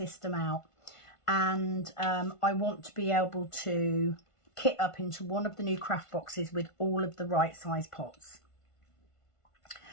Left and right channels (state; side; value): late; right; 1.5 ms